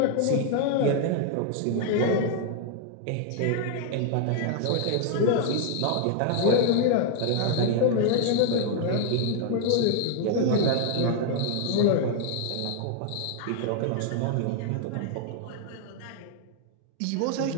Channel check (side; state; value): both; different; correlation 0.00